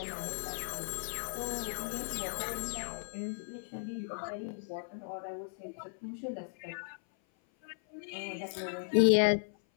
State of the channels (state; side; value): silent; right; 54 dB below the other